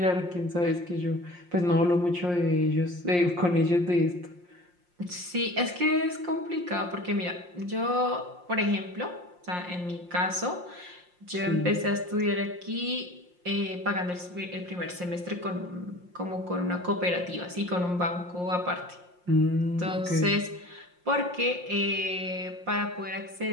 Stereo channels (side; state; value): left; late; 5.6 ms